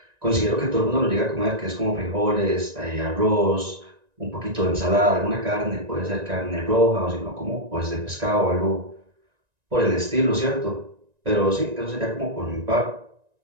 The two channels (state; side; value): late; left; 1.9 ms